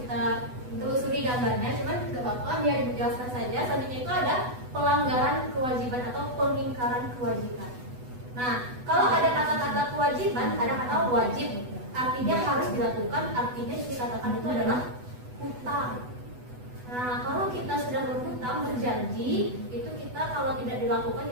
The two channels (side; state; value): left; late; 8.1 ms